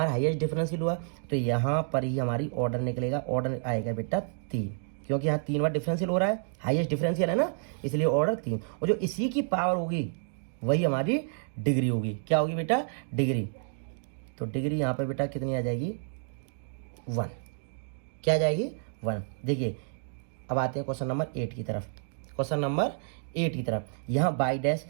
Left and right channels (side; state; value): left; silent; digital silence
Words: हाईएस्ट डिफरेंशियल हुआ, तो यहाँ पर ही हमारी ऑर्डर निकलेगा, ऑर्डर आएगा बेटा 3, क्योंकि यहाँ 3 बार डिफरेंशियल हो रहा है, हाईएस्ट डिफरेंशियल है ना, इसलिए ऑर्डर 3, और जो इसी की पावर होगी वही हमारी डिग्री होगी। क्या होगी बेटा, डिग्री, तो डिग्री यहाँ पर बेटा कितनी आ जाएगी, 1। क्या आ जाएगी, 1। देखिए अब आते हैं क्वेश्चन नंबर 8 की तरफ। क्वेश्चन नंबर 8 की तरफ, यहाँ y dash